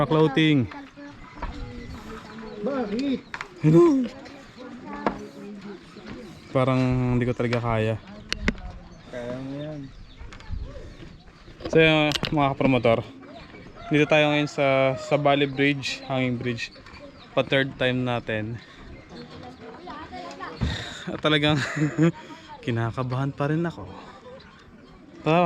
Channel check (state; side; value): identical; both; correlation 1.00